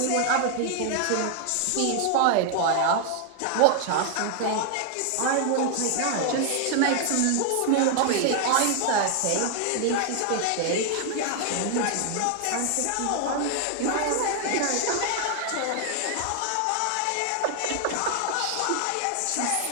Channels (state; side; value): different; both; correlation 0.00